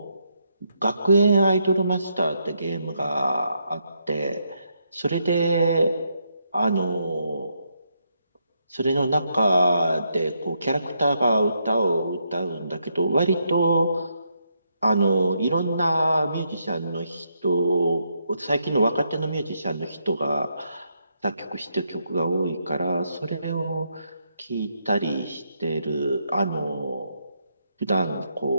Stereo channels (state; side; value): inverted; both; correlation -0.78